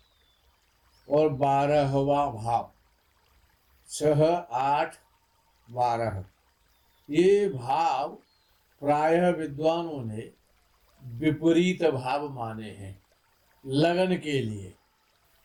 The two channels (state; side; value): identical; both; correlation 1.00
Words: और 12वां भाव, 6, 8, 12, ये भाव प्रायः विद्वानों ने विपरीत भाव माने हैं लगन के लिए।